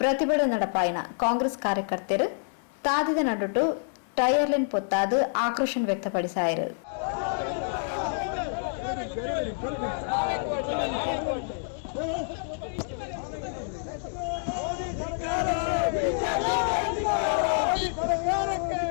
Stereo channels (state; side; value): silent; right; 60 dB below the other